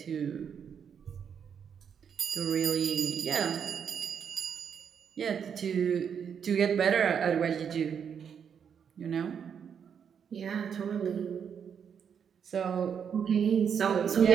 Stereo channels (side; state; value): left; quieter; 7.5 dB